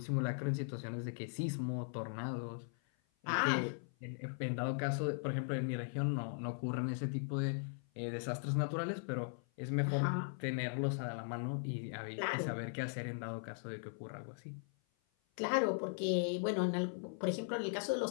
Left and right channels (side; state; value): right; silent; 52 dB below the other